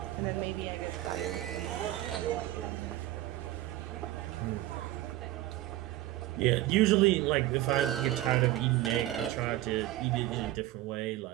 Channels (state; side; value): quieter; left; 15.4 dB